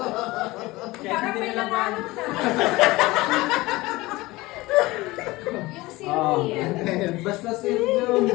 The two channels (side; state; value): right; quieter; 20.4 dB